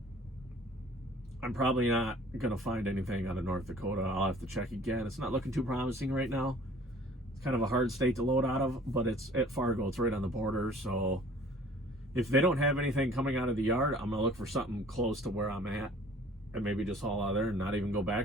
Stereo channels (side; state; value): both; normal; correlation 0.51